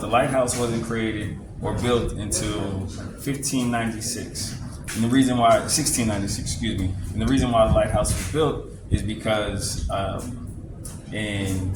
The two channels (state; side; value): identical; both; correlation 1.00